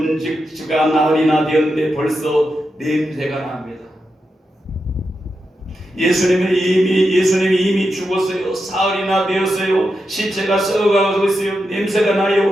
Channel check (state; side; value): normal; both; correlation 0.87